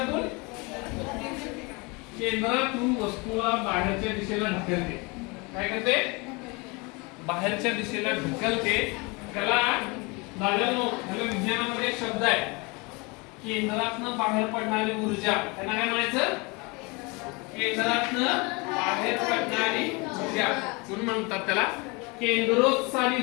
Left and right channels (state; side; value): quieter; right; 27.8 dB